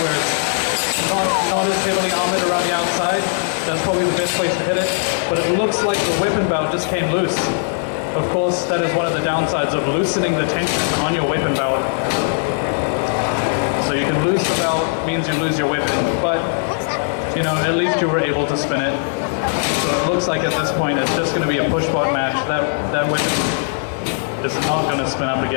it's not as heavily armored around the outside, that's probably the best place to hit it. But it looks like the weapon belt just came loose. Of course, that is one of the downsides of loosening the tension on your weapon belt. So you can lose the belt, means you lose your weapon, but you know, at least you were able to spin it. So it looks like at this point it's just going to be a push-bot match. That weapon is not going to spin up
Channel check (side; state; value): right; silent; digital silence